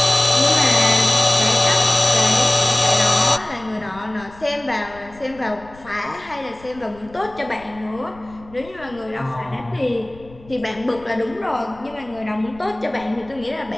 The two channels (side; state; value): left; noise; rumble, 23 dB below the sound